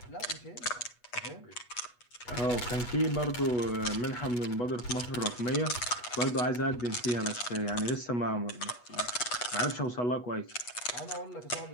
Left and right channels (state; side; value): late; right; 8.2 ms